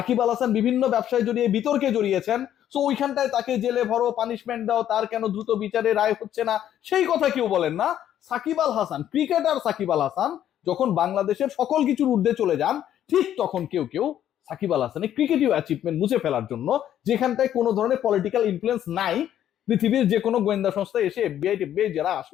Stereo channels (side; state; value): right; quieter; 11.0 dB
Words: আল হাসান বিভিন্ন ব্যবসায় জড়িয়ে বিতর্কে জড়িয়েছেন, তো ওইখানটায় তাকে জেলে ভরো, পানিশমেন্ট দাও, তার কেন দ্রুত বিচারে রায় হচ্ছে না, সেই কথা কেউ বলেন না। সাকিব আল হাসান, ক্রিকেটার সাকিব আল হাসান যখন বাংলাদেশের সকল কিছুর ঊর্ধ্বে চলে যান, ঠিক তখন কেউ কেউ সাকিব আল হাসানের ক্রিকেটীয় অ্যাচিভমেন্ট মুছে ফেলার জন্য, যেখানটায় কোনো ধরনের পলিটিক্যাল ইনফ্লুয়েন্স নাই, পৃথিবীর যে কোনো গোয়েন্দা সংস্থা এসে এফবিআই টেফবিআই যারা